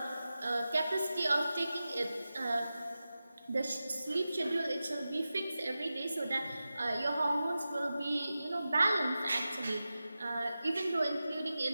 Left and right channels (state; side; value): inverted; both; correlation -0.93